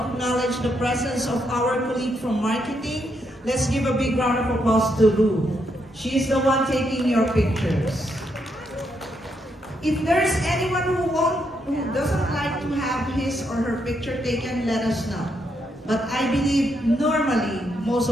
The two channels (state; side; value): normal; both; correlation 0.78